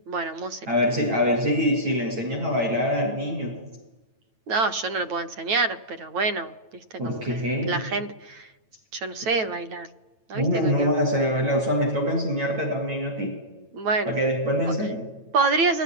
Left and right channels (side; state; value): left; late; 9.1 ms